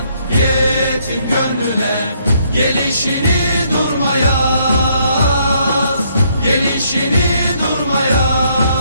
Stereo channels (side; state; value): both; inverted; correlation -0.69